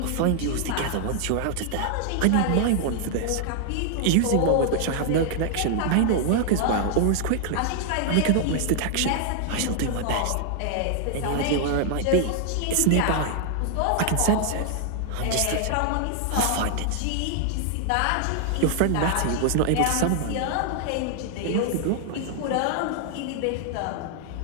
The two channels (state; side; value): different; both; correlation 0.00